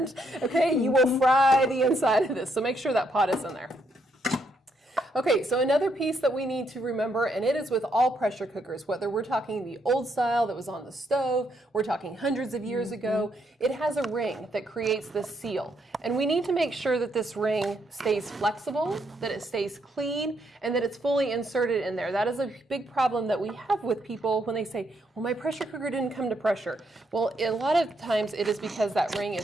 okay? You will fry the inside of this, so make sure that pot is in there. Okay, so another piece that we need to remember, and it is with all pressure cookers, whether we're talking the old style that was on the stove, we're talking hundreds of years ago, it has a ring that creates this seal. And we need to make sure that this ring stays flexible, that it stays clean, and that it's fully inserted in there. That is a big problem that we have with people when they say, well, my pressure cooker didn't come to pressure. Well, a lot of times it is because that ring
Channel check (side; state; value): both; normal; correlation 0.75